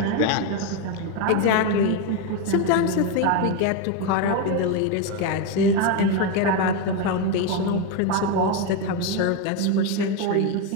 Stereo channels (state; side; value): different; both; correlation 0.03